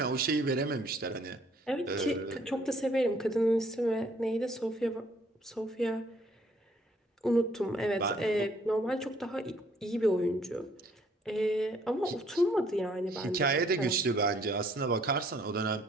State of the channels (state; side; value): normal; both; correlation 0.63